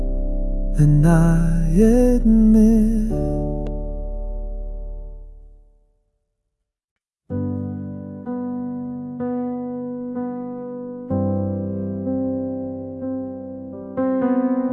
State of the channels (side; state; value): both; identical; correlation 1.00